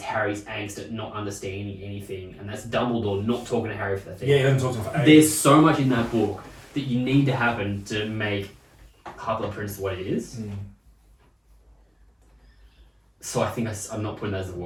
Harry's angst at not understanding anything, and that's Dumbledore not talking to Harry for that thing. Yeah, he doesn't talk to him for ages. There's so much in that book that you need to happen to make Half-Blood Prince what it is. So I think I'm not putting that as the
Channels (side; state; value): both; identical; correlation 1.00